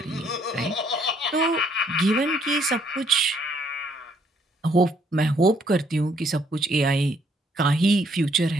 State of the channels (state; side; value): normal; both; correlation 0.67